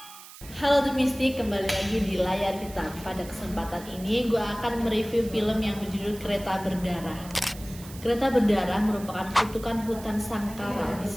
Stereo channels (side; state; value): right; noise; hiss, 17 dB below the sound